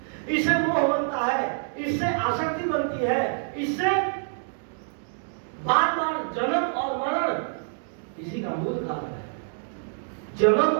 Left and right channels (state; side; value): silent; left; digital silence